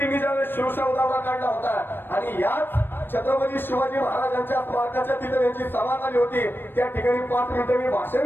ज्यावेळेस शिवशाहू दौरा काढला होता आणि याच छत्रपती शिवाजी महाराजांच्या स्मारकाच्या तिथे त्यांची सभा झाली होती. त्या ठिकाणी 5 मिनिटं मी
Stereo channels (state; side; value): late; right; 0.098 ms